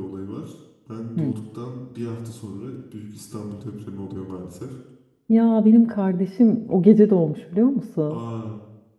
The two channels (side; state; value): both; identical; correlation 1.00